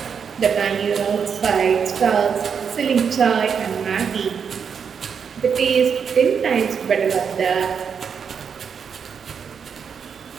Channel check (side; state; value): left; quieter; 6.7 dB